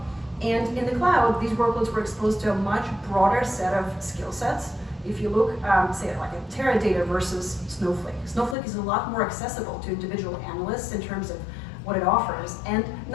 And in the cloud, these workloads were exposed to a much broader set of skill sets. If you look, say, like a Teradata versus Snowflake. Snowflake is a lot more accessible to individual analysts in terms of what it offers, and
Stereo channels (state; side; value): drops out; right; at 8.6 s